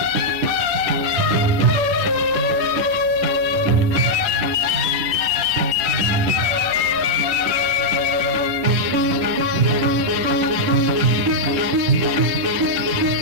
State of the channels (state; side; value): late; left; 10 ms